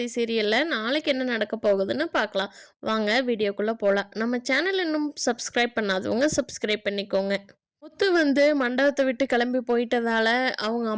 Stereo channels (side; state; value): both; identical; correlation 1.00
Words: சீரியலில் நாளைக்கு என்ன நடக்க போகுதுன்னு பார்க்கலாம். வாங்க வீடியோக்குள்ளே போகலாம். நம்ம சேனல் இன்னும் சப்ஸ்கிரைப் பண்ணாதவங்க சப்ஸ்கிரைப் பண்ணிக்கோங்க. முத்து மண்டபத்தை விட்டு கிளம்பி போயிட்டதால அவங்க